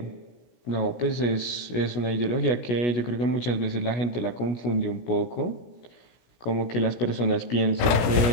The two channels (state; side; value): late; right; 16 ms